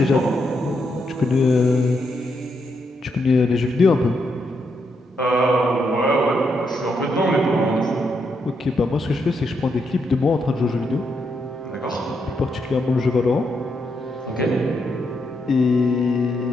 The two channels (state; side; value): normal; both; correlation 0.80